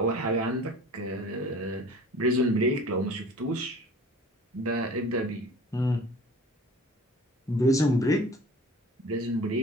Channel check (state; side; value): normal; both; correlation 0.44